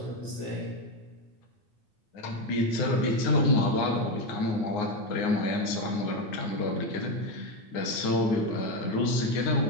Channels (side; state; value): right; late; 9.6 ms